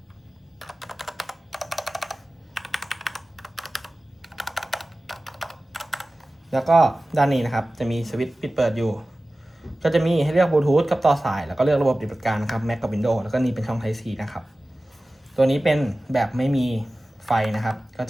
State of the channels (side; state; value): both; normal; correlation 0.96